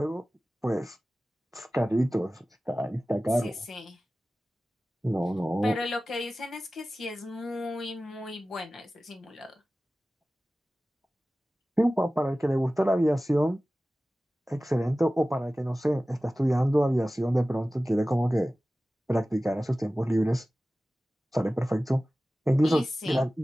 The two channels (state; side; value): normal; both; correlation 0.96